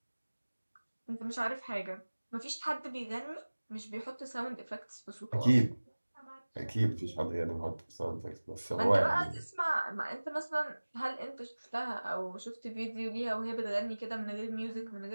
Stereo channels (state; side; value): inverted; both; correlation -1.00